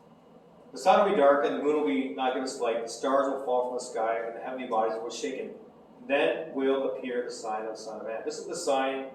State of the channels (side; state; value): both; identical; correlation 1.00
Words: The sun will be dark, and the moon will be not give its light. The stars will fall from the sky, and the heavenly bodies will be shaken. Then will appear the sign of the Son of Man. This is the sign